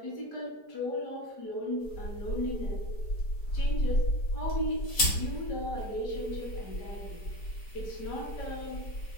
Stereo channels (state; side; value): late; right; 4.7 ms